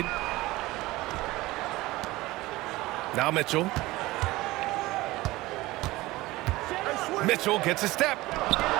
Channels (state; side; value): quieter; left; 19.3 dB